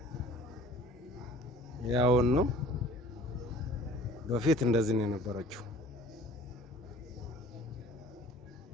ያውን ነው በፊት እንደዚህ ነው የነበረችው።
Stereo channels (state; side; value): normal; both; correlation 0.49